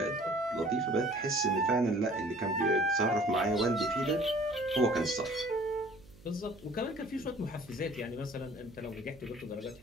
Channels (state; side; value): noise; right; hum, 23 dB below the sound